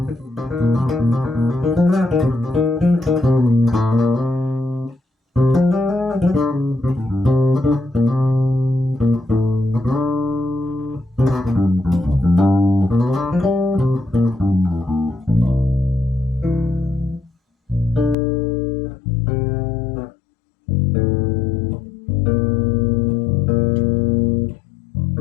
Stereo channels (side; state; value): right; drops out; at 18.2 s